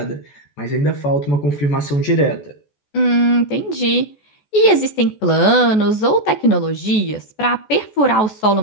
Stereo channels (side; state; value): right; late; 14 ms